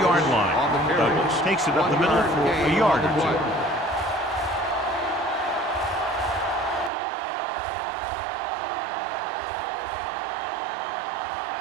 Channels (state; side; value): drops out; left; at 6.9 s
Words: line. Douglas takes it up the middle for a yard or 2.